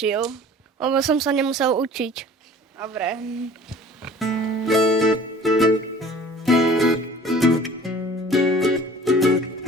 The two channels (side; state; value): both; normal; correlation 0.47